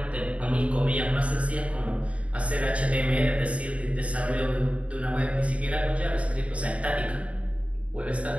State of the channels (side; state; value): left; late; 0.064 ms